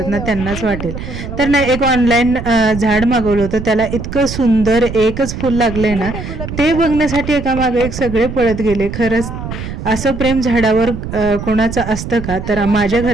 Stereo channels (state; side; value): noise; right; rumble, 8 dB below the sound